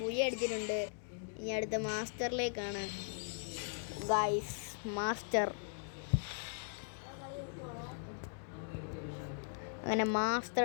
ബുയ അടിച്ചിട്ടുണ്ട്. ഇനി അടുത്ത മാസ്റ്ററിലേക്കാണ് ഗൈസ്. മാസ്റ്റർ അങ്ങനെ മാസ്റ്റർ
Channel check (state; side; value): silent; right; digital silence